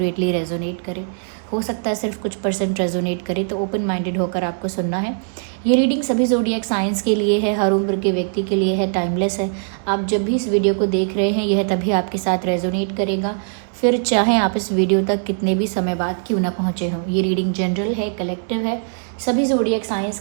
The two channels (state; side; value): silent; left; digital silence